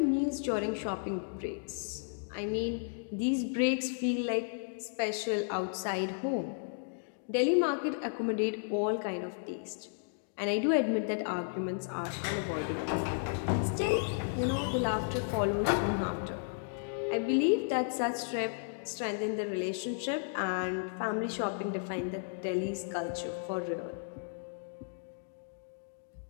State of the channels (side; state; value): right; silent; digital silence